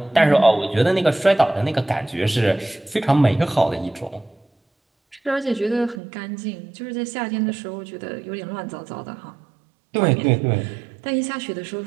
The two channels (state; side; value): drops out; left; at 6.0 s